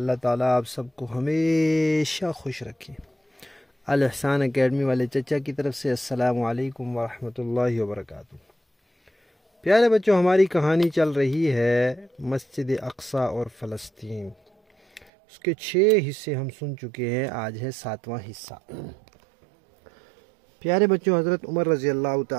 تعالیٰ آپ سب کو ہمیشہ خوش رکھے۔ الاحسان اکیڈمی والے چچا کی طرف سے السلام علیکم ورحمۃ اللہ وبرکاتہ۔ پیارے بچوں، ہماری کہانی چل رہی ہے مسجد اقصی اور فلسطین۔ اس کے 6 حصے ہم سن چکے ہیں، آج ہے 7واں حصہ۔ پیارے بچوں، حضرت عمر رضی اللہ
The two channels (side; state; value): left; drops out; at 15.1 s